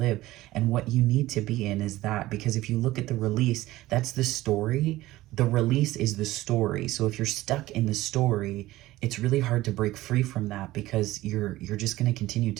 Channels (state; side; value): quieter; left; 17.0 dB